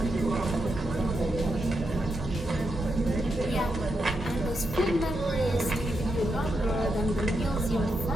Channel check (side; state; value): both; normal; correlation 0.84